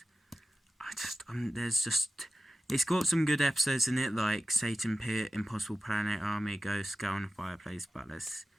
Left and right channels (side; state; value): both; normal; correlation 0.94